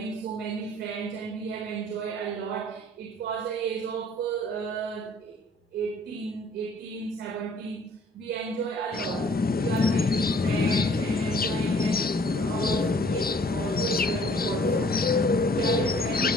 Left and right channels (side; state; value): both; normal; correlation 0.56